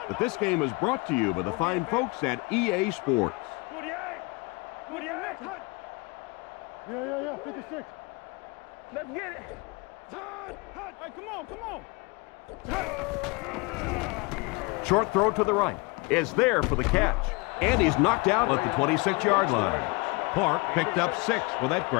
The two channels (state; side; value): quieter; right; 26.6 dB